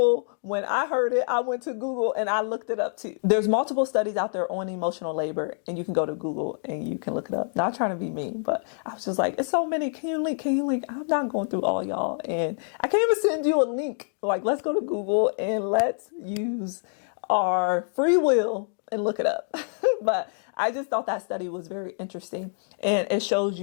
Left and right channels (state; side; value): silent; right; digital silence